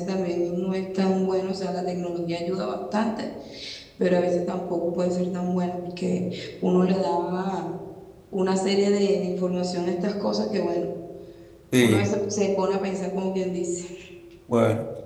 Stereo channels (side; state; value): both; identical; correlation 1.00